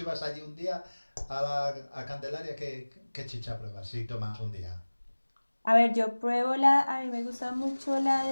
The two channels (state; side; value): inverted; both; correlation -1.00